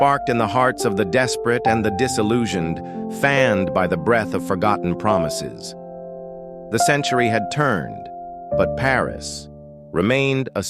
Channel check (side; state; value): both; identical; correlation 1.00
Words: in the hearts of the desperate and the disillusioned, fanned by the breath of forgotten promises. The century had turned, but Paris remained a